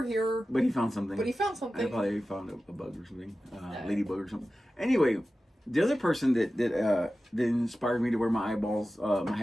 here. But he found something. I probably found a bug or something, ladybug or something. Anyway, The other person that inspired me to wear my eyeballs, my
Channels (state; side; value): normal; both; correlation 0.94